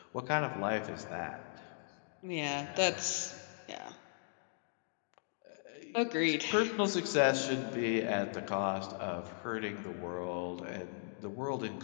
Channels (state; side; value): silent; right; digital silence